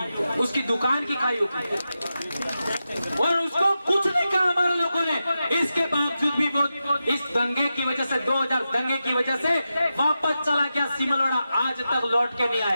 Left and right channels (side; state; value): both; inverted; correlation -0.91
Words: उसकी दुकान की खाई होगी, और उसको कुछ नहीं कहा हमारे लोगों ने। इसके बावजूद भी वो इस दंगे की वजह से, 2000 दंगे की वजह से वापस चला गया सिमलवाड़ा, आज तक लौट के नहीं